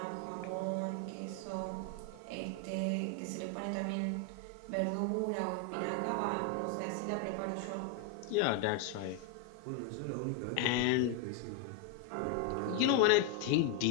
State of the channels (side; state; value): both; different; correlation 0.01